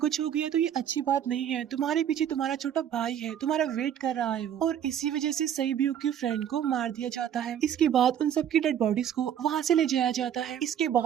हो गया तो ये अच्छी बात नहीं है, तुम्हारे पीछे तुम्हारा छोटा भाई है, तुम्हारा वेट कर रहा है वो। और इसी वजह से सैब्यूक की फ्रेंड को मार दिया जाता है। इसके बाद उन सबकी डेड बॉडीज को वहाँ से ले जाया जाता है। इसके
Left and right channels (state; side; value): quieter; left; 9.6 dB